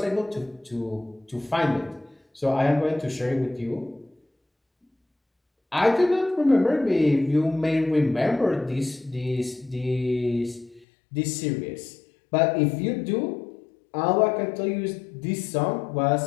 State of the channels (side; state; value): right; drops out; at 10.9 s